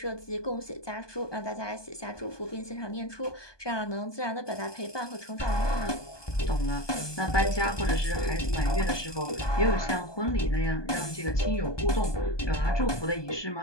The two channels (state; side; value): late; right; 1.2 ms